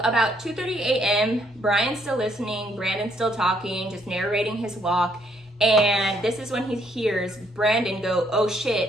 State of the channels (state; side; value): normal; both; correlation 0.69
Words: about 2:30 a.m., Brian's still listening, Brandon's still talking, just narrating his walk. And this is when he hears Brandon go, "Oh